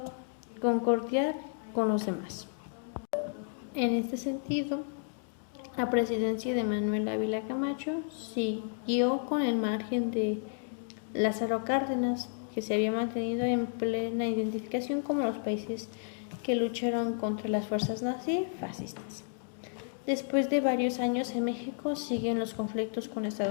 concordiar con los demás. En este sentido, la presidencia de Manuel Ávila Camacho siguió con el margen de Lázaro Cárdenas, que se había mantenido en plena identificación como los países que lucharon contra las fuerzas nazifascistas. Después de varios años en México siguen los conflictos con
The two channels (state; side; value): silent; right; digital silence